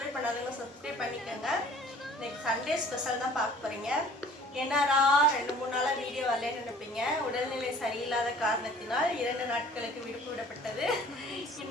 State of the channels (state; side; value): normal; both; correlation 0.51